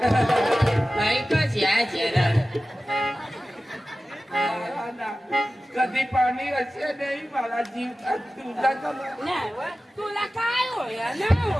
बाई कशी आहे ना हा ना. कधी पाणी असे नाही मला जीव तुझा तुला काय होय ना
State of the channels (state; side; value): normal; both; correlation 0.95